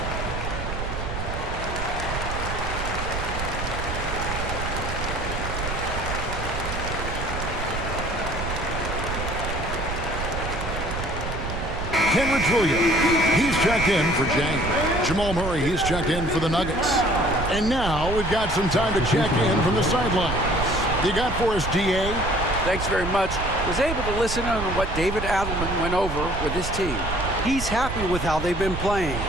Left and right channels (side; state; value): right; noise; rumble, 5 dB below the sound